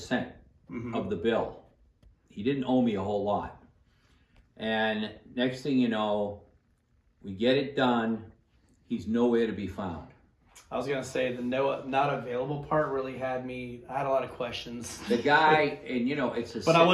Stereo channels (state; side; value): identical; both; correlation 1.00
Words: of the bill. He didn't owe me a whole lot. And next thing you know, we get it done. He's nowhere to be found. I was gonna say the not available part really had me. I had a lot of questions. The guy, and it's a. But I